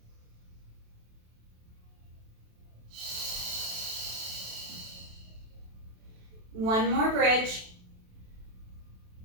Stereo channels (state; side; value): late; left; 27 ms